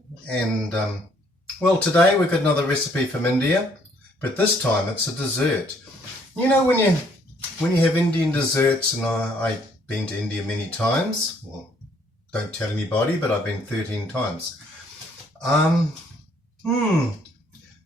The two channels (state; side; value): normal; both; correlation 0.64